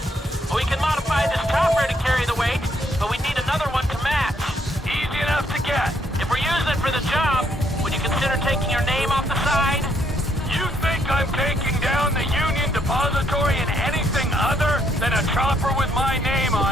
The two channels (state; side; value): normal; both; correlation 0.71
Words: We can modify this chopper to carry the weight, but we need another one to match. Easy enough to get. If we're using it for the job, would you consider taking your name off the side? You think I'm taking down the Union Depository in anything other than a chopper with my name